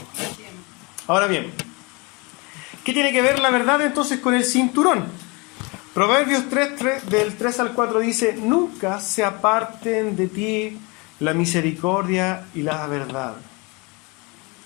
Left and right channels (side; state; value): right; quieter; 28.3 dB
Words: Ahora bien, ¿qué tiene que ver la verdad entonces con el cinturón? Proverbios 3, del 3 al 4 dice, nunca se aparten de ti la misericordia y la verdad.